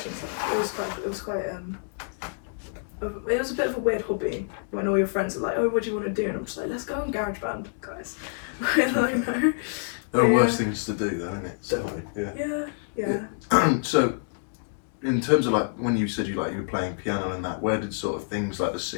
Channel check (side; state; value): right; silent; digital silence